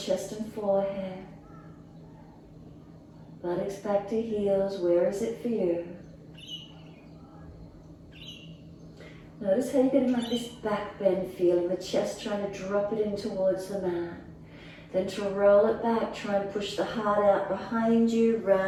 and forehead. Buttocks back to heels. Where is it for you? Notice how you're getting like this back bend feeling, the chest trying to drop it in towards the mat. Then to roll it back, try and push the heart out behind you,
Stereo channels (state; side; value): identical; both; correlation 1.00